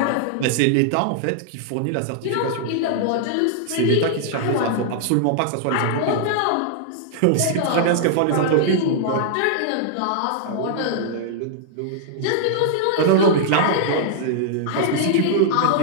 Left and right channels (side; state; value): both; different; correlation -0.01